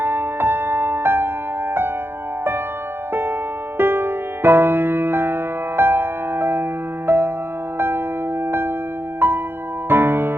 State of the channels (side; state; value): left; late; 0.11 ms